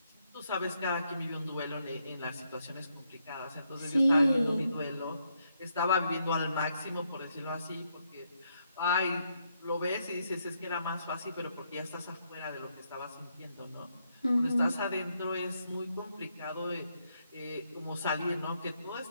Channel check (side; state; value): both; inverted; correlation -0.77